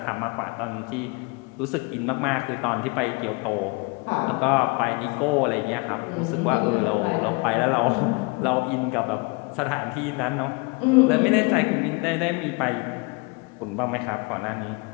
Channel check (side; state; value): right; quieter; 29.1 dB